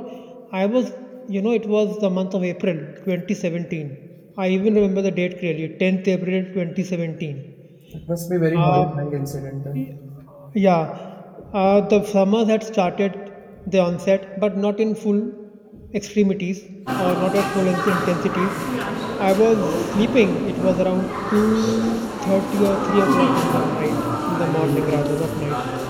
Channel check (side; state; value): both; identical; correlation 1.00